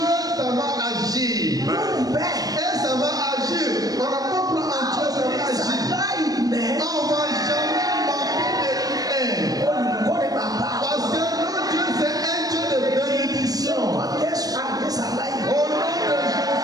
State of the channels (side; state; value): left; late; 0.18 ms